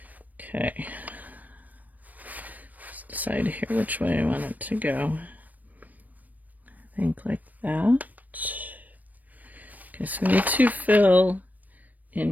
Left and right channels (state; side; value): late; left; 0.081 ms